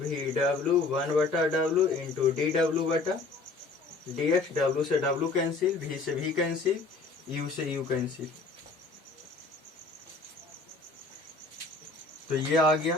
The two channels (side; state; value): right; quieter; 3.7 dB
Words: W 1/w into D डब्ल्यू बटा D x. W से W cancel, भी से भी cancel, you से you cancel, तो ये आ